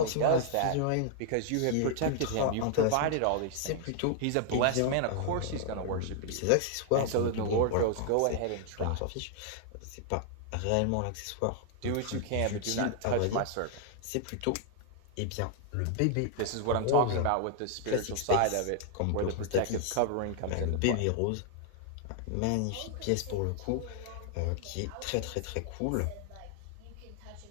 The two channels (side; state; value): both; different; correlation 0.00